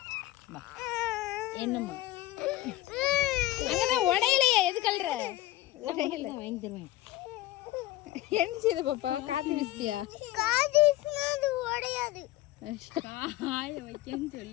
என்னம்மா அங்கதான் உடையிலையே, எது கல்ற? உடையில வாங்கி தருவேன். என்ன செய்த பாப்பா? காத்து வீசியா? காது வீசினா அது உடையாது. காய வைக்கன்னு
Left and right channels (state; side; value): quieter; right; 15.9 dB